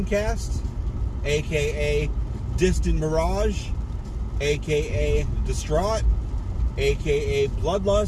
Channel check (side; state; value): both; identical; correlation 1.00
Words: aka Distant Mirage, aka Distraught, aka